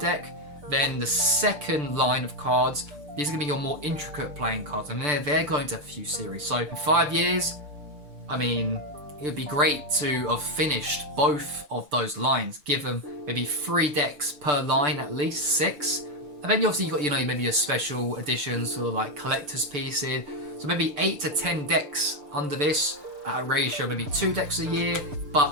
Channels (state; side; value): late; left; 6.8 ms